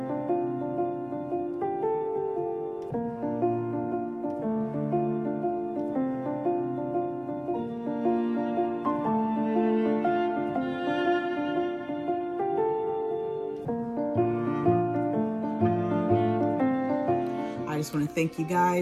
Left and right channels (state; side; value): identical; both; correlation 1.00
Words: I just want to thank you